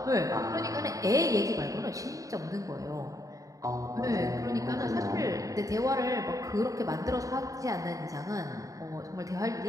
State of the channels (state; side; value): late; left; 0.16 ms